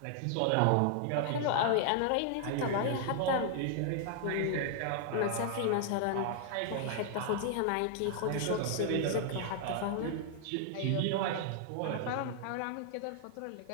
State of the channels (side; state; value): both; different; correlation 0.00